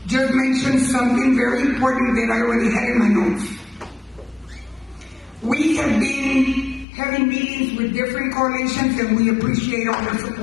just mentioned something very important that I already had in my notes. We have been having meetings with different coalitions and we appreciate all their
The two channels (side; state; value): right; drops out; at 6.9 s